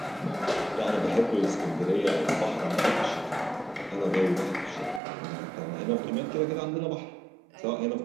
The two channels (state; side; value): drops out; left; at 5.0 s